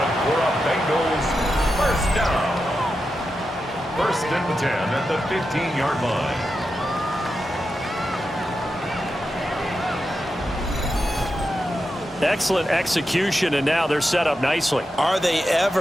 for a Bengals 1st down. 1st and 10 at the 15-yard line. Excellent execution, and now they're set up nicely. Are they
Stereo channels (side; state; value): both; normal; correlation 0.89